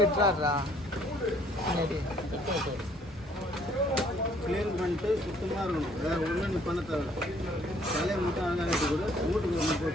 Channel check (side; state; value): both; normal; correlation 0.61